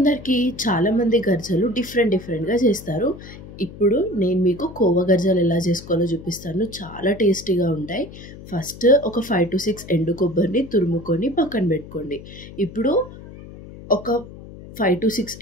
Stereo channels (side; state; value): left; noise; hum, 16 dB below the sound